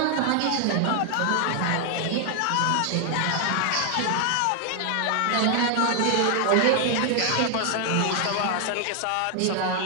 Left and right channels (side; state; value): both; different; correlation 0.00